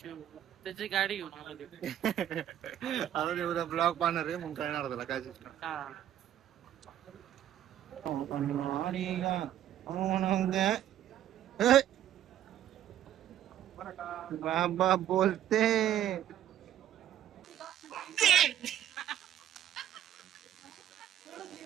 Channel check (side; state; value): left; quieter; 11.4 dB